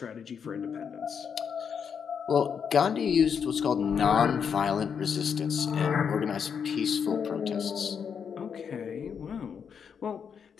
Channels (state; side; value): quieter; right; 7.0 dB